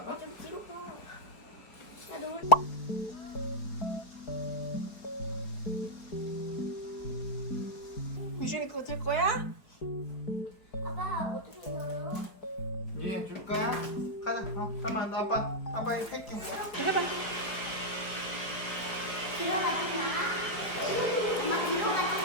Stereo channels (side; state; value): right; late; 4.6 ms